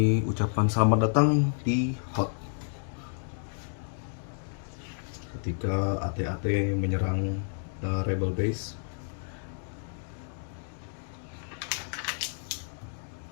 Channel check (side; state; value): right; silent; 58 dB below the other